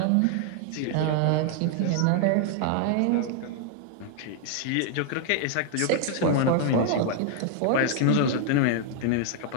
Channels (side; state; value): both; different; correlation 0.00